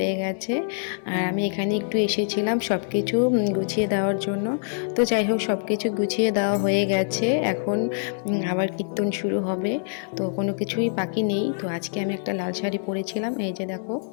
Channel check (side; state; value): right; silent; digital silence